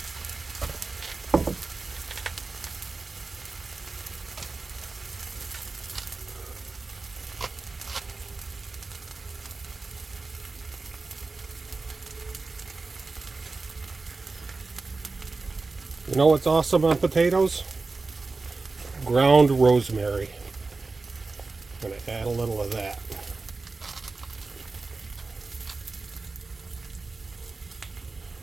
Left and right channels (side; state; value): left; quieter; 3.8 dB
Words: You know what's awesome on potatoes? Ground rosemary. I'm going to add a little of that.